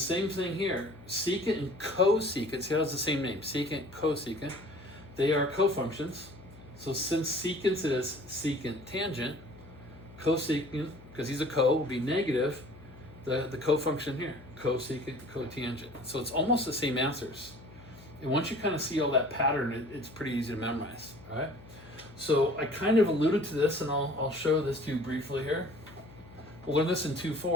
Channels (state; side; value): noise; left; hum, 20 dB below the sound